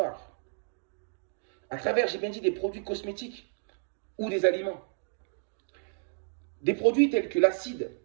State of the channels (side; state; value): left; silent; digital silence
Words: À travers, j'ai bien dit, des produits cosmétiques ou des aliments. Des produits tels que l'acide